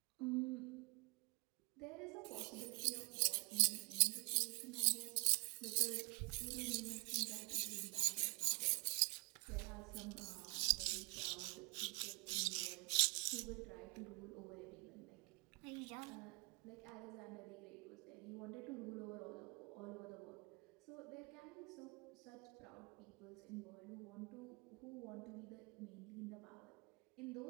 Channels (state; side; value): quieter; left; 31.8 dB